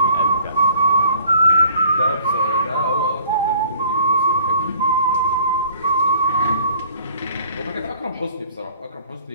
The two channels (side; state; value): both; inverted; correlation -0.54